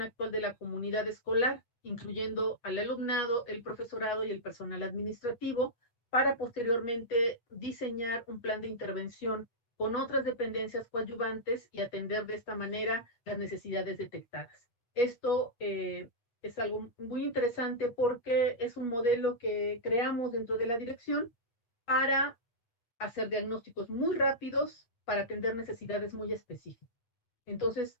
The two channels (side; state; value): right; late; 8.3 ms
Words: actual de la comunidad escolar, incluyendo al alumnado, el profesorado y el personal administrativo, para posteriormente diseñar un plan de intervención con otras dependencias coadyuvantes y atender de esta manera las necesidades detectadas. Esto es algo muy interesante porque es un modelo que creamos dentro de la dirección para hacer diagnósticos muy rápidos para atender necesidades muy específicas. Entonces,